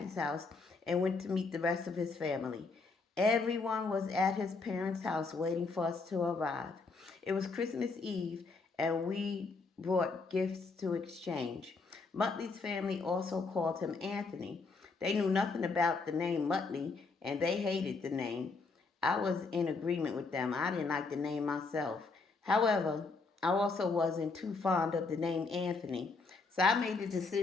house and went to meet the rest of his family. Everyone was at his parents' house waiting for us to arrive. It was Christmas Eve, and we brought gifts to exchange. Muttley's family also called him Anthony. They knew nothing about the name Muttley, and they hated the name. I was in agreement with them. I didn't like the name myself. However, I also wasn't too fond of the name Anthony, so I made the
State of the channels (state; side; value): quieter; right; 4.1 dB